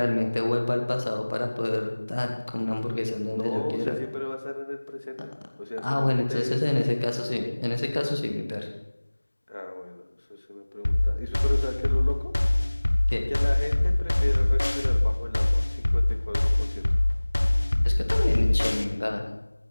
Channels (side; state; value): both; inverted; correlation -1.00